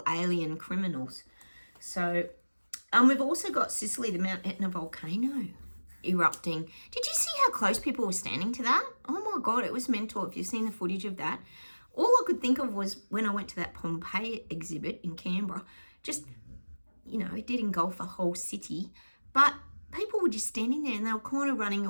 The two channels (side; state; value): both; inverted; correlation -1.00